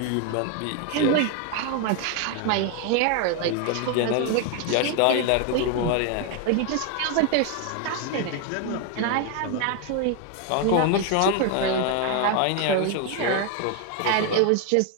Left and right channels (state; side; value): different; both; correlation 0.01